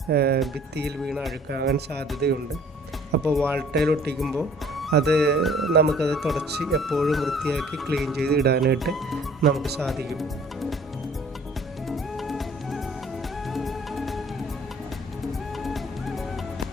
ഭിത്തിയിൽ വീണ് അഴുക്കാകാൻ സാധ്യതയുണ്ട്. അപ്പോൾ വാൾ ടൈൽ ഒട്ടിക്കുമ്പോൾ നമുക്കത് തുടച്ച് എപ്പോഴും വൃത്തിയാക്കി ക്ലീൻ ചെയ്ത് ഇടാനായിട്ട് നമുക്ക് സാധിക്കും.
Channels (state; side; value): normal; both; correlation 0.54